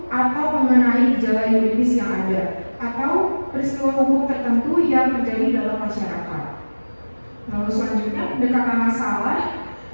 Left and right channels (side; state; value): both; inverted; correlation -1.00